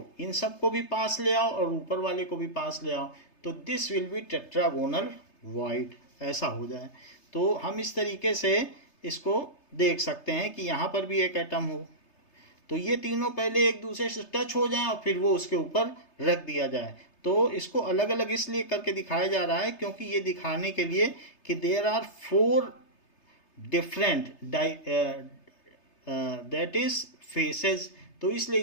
इन सब को भी पास ले आओ और ऊपर वाले को भी पास ले आओ, तो this will B tetragonal void, ऐसा हो जाए। तो हम इस तरीके से इसको देख सकते हैं कि यहाँ पर भी एक एटम हो, तो ये तीनों पहले एक दूसरे से टच हो जाएं और फिर वो उसके ऊपर रख दिया जाए। तो इसको अलग अलग इसलिए करके दिखाया जा रहा है क्योंकि ये दिखाने के लिए कि there are 4 different that is faces, तो इसलिए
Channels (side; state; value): right; late; 3.3 ms